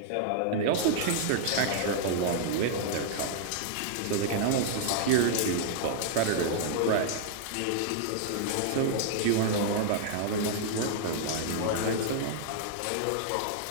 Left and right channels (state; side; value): different; both; correlation -0.01